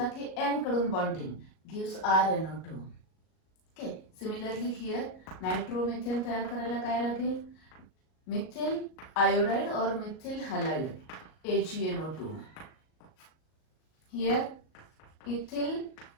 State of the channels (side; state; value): right; late; 38 ms